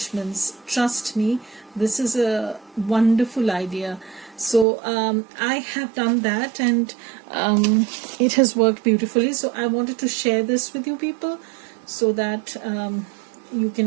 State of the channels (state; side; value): drops out; left; at 4.7 s